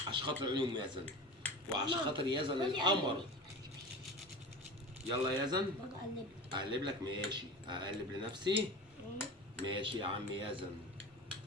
عشان خاطر عيون يزن وعشان خاطر يزن القمر. يلا يا يزن اقلب لك. ماشي، اقلب لنفسي. ماشي يا عم يزن،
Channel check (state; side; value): normal; both; correlation 0.32